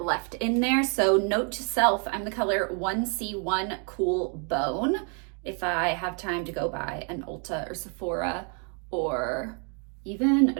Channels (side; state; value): left; quieter; 39.8 dB